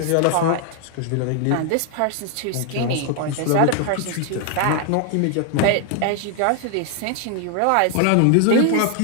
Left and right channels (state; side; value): different; both; correlation 0.00